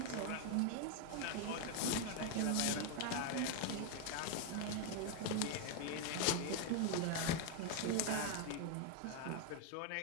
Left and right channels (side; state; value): both; different; correlation 0.01